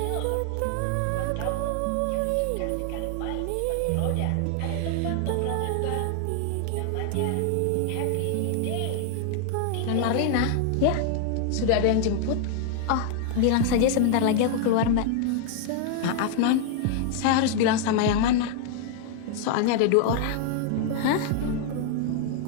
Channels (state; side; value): different; both; correlation 0.00